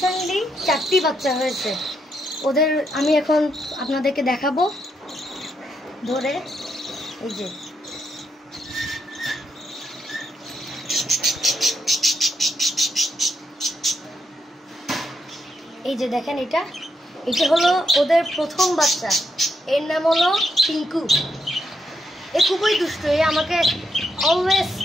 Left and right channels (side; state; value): both; normal; correlation 0.78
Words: 4টি বাচ্চা হয়েছে। ওদের আমি এখন আপনাদেরকে দেখাবো ধরে। এই যে দেখেন, এটা হলো ওদের প্রথম বাচ্চা। এর নাম হলো টিঙ্কু। এ খুবই দুষ্ট, এ আমাকে অলওয়েজ